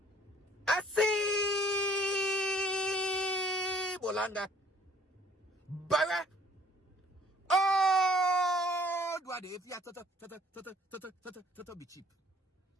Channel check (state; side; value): normal; both; correlation 0.57